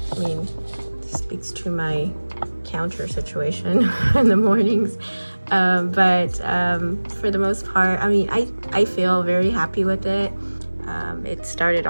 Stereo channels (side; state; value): both; inverted; correlation -1.00